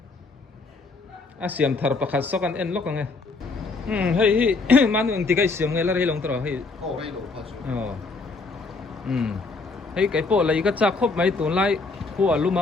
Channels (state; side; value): quieter; right; 3.9 dB